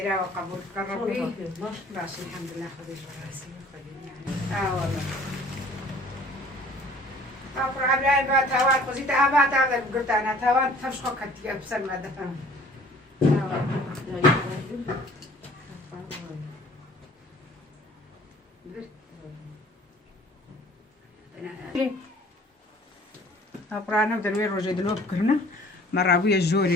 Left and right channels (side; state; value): both; normal; correlation 0.52